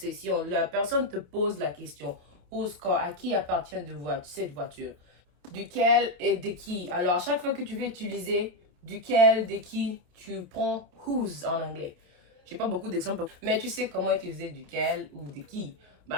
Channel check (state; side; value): late; left; 28 ms